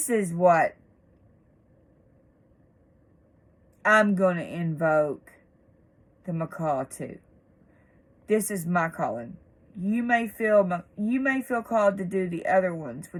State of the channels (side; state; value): both; identical; correlation 1.00